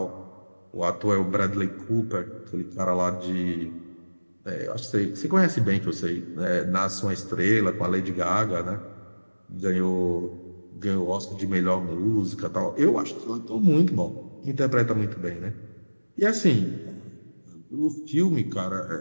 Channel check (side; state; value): both; inverted; correlation -1.00